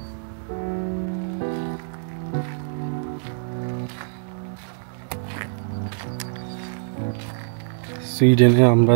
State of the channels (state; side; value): silent; left; digital silence